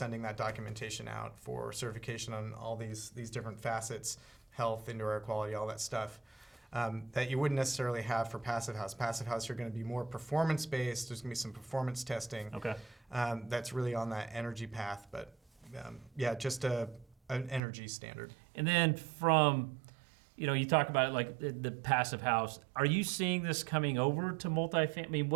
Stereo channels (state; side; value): drops out; left; at 17.6 s